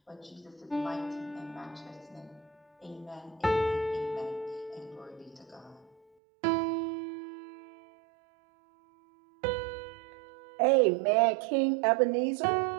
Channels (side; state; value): left; drops out; at 6.0 s